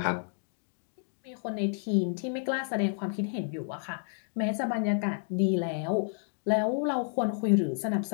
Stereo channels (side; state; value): right; silent; digital silence